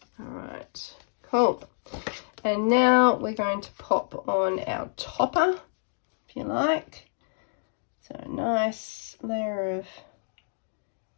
Alright, cool. And now we're going to pop on our topper, if you like. So a nice layer of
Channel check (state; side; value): silent; right; digital silence